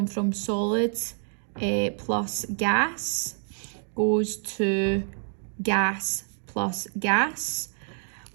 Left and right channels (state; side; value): silent; left; 56 dB below the other